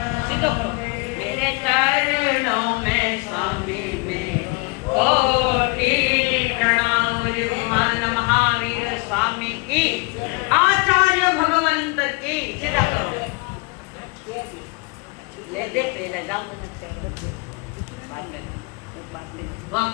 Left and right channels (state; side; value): quieter; right; 28.1 dB